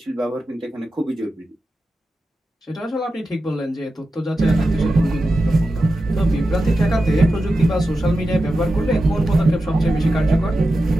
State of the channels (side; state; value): both; normal; correlation 0.91